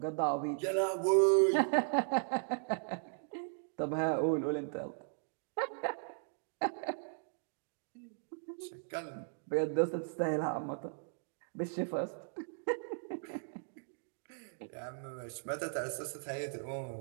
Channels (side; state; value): left; silent; digital silence